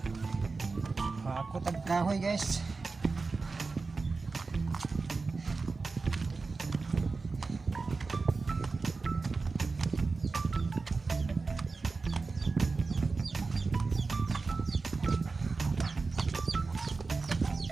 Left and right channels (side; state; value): left; quieter; 4.1 dB